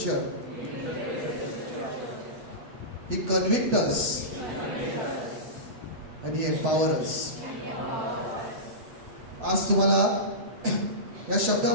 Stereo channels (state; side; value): late; left; 8.0 ms